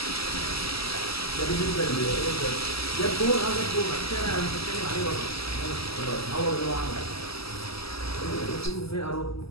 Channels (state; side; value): late; right; 0.76 ms